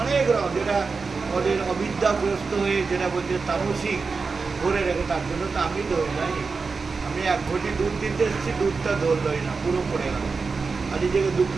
অনেক রকম, যেটা ওদের অবিদ্যাগ্রস্ত হয়ে যেটা বলছে তামসিক ধরে রেখে, তার জন্য তো আমি ধরি নাই। আমি 1 ঘটি দুধ দিতে এসেছি, দুধটা ধরলই না, পুরো পড়ে গেল, আর নিজেকে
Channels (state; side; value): quieter; left; 4.6 dB